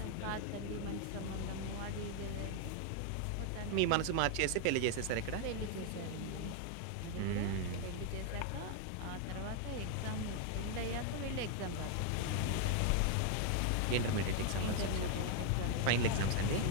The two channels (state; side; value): different; both; correlation 0.00